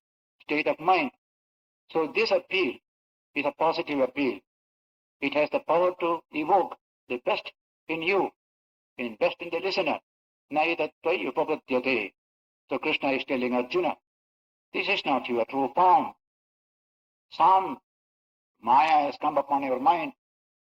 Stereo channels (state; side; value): identical; both; correlation 1.00